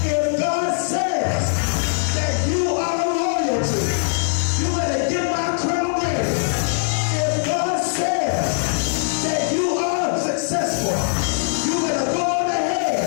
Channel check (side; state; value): right; silent; digital silence